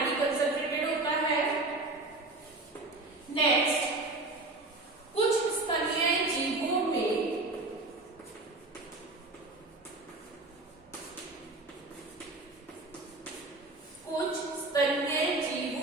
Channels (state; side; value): quieter; left; 3.1 dB